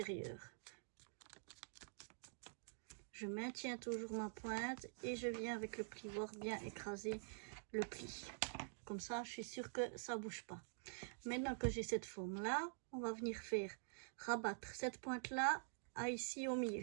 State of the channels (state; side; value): silent; left; digital silence